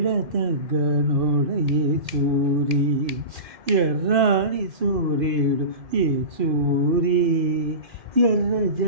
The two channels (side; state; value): left; late; 2.2 ms